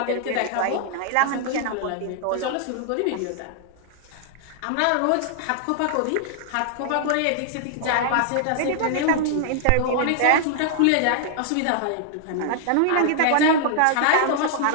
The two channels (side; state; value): both; different; correlation -0.01